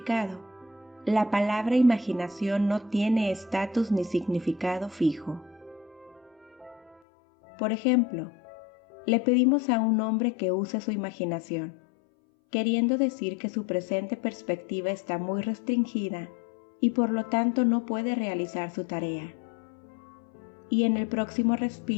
La palabra imaginación no tiene estatus ni significado fijo. Por ejemplo, le pedimos a un hombre que use su imaginación, queriendo decir que su presente perspectiva está muy restringida y por lo tanto no puede realizar su tarea. Y en el próximo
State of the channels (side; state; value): right; drops out; at 7.0 s